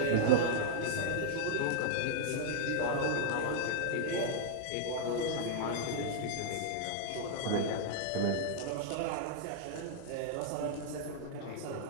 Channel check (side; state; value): both; different; correlation -0.01